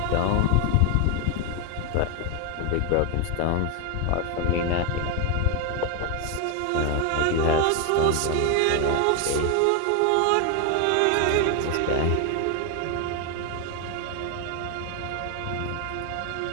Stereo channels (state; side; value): different; both; correlation 0.01